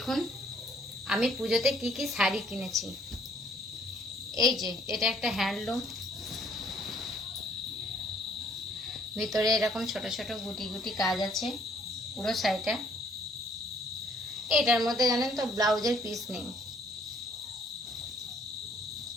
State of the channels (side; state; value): both; normal; correlation 0.62